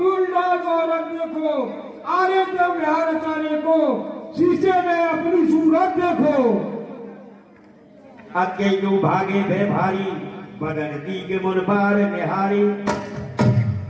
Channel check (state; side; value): identical; both; correlation 1.00